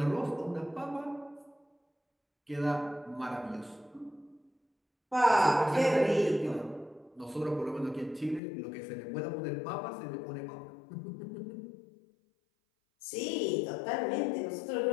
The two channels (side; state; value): right; drops out; at 8.4 s